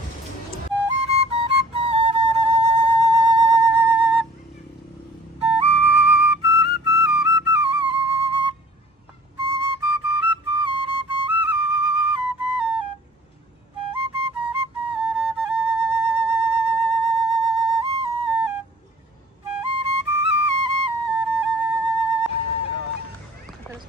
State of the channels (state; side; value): normal; both; correlation 0.51